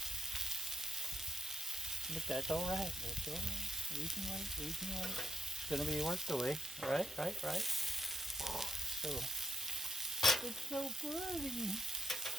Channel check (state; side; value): normal; both; correlation 0.81